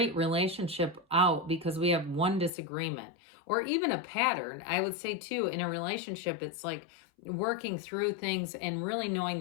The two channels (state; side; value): drops out; right; at 2.5 s